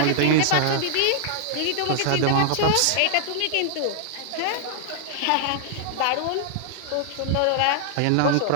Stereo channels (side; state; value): both; different; correlation -0.01